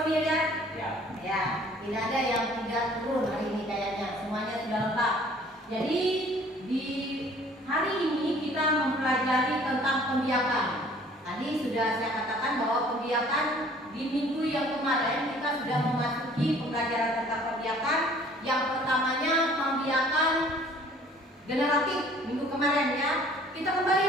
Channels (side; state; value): both; normal; correlation 0.54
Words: ya. Ya. Ya, tidak ada yang tidak turun hari ini kayaknya. Semuanya sudah lengkap. Jadi di hari ini kita mempelajari tentang pembiakan. Tadi sudah saya katakan bahwa pembiakan di minggu yang kemarin kita sudah memasuki pembelajaran tentang pembiakan. Yang pertamanya pembiakan generatif minggu kemarin ya. Kita kembali